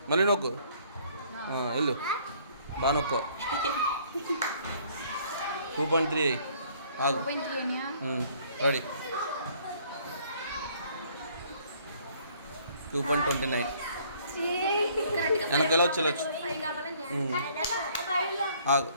మళ్ళీ నొక్కు వెళ్ళు బాగా నొక్కు 2.3 ఆగు రెడీ 2.29 వెనక ఎలా వచ్చి ఆగు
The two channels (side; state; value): both; inverted; correlation -0.60